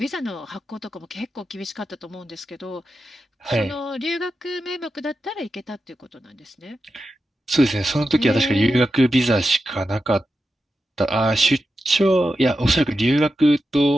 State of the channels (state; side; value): normal; both; correlation 0.90